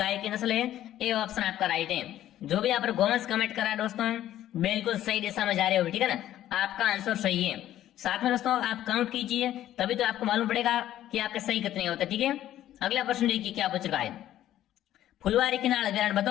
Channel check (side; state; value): right; quieter; 12.7 dB